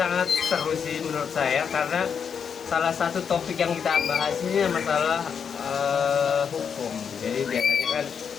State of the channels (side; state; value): right; quieter; 7.0 dB